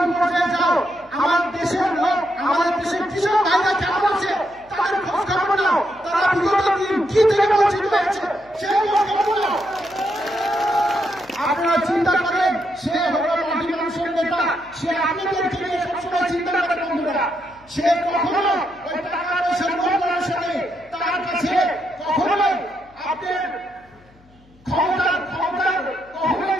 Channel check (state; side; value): noise; left; hum, 29 dB below the sound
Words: পর্যায়ে যাও, আমার দেশের লোক, আমাদের দেশের কৃষক ভাইরা কেমন আছে তাদের খোঁজ খবর নাও, তারা বিগত দিন কি থেকে বঞ্চিত হয়েছে সেই খোঁজ খবর নাও। আপনারা চিন্তা করেন সে হলো মাটি মানুষের নেতা, সে আপনাদেরকে নিয়ে সবসময় চিন্তা করে বন্ধুরা। সে কখনো ওই টাকা পয়সার লোভ লালসা নেই, তার কাছে কখনোই আপনার ক্ষমতার কখনোই